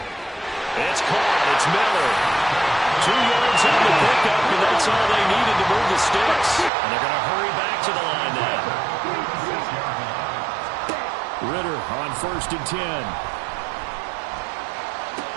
It's caught, it's Miller. 2 yards on the pickup, and that's all they needed to move the sticks. And they're going to hurry back to the line now. Ritter on 1st and 10.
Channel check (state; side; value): drops out; left; at 6.7 s